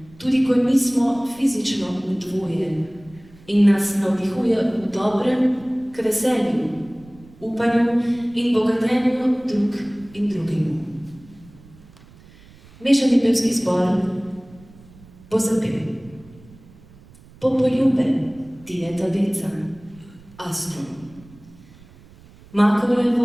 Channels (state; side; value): noise; right; rumble, 24 dB below the sound